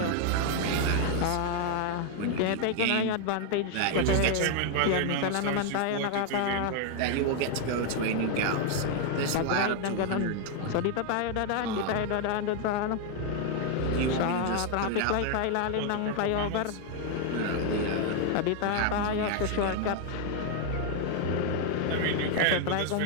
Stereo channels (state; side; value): different; both; correlation 0.00